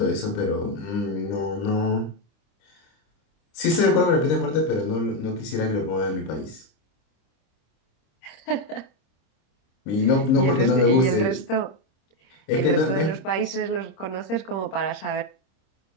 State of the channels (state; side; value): late; right; 26 ms